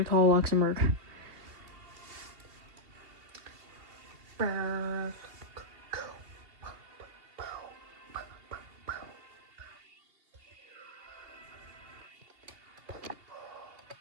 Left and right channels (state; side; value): late; left; 2.9 ms